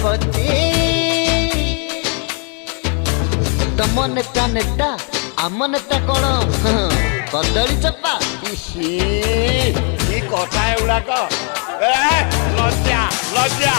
तम नेता नेता आम नेता कौन कदली चप्पा कथा एगुड़ाक लज्जा लज्जा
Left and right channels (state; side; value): quieter; right; 39.2 dB